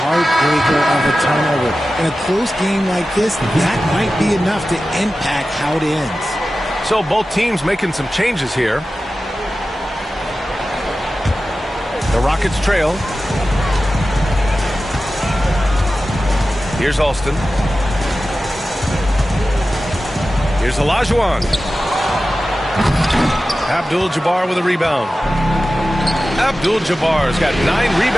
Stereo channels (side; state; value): both; normal; correlation 0.94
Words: of a turnover. In a close game like this, that might be enough to impact how it ends. So both teams making some changes here. The Rockets trail. Here's Alston. Here's Olajuwon. Abdul-Jabbar with a rebound. Abdul-Jabbar's got 9